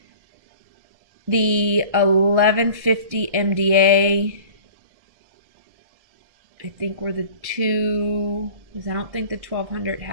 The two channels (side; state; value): left; late; 1.6 ms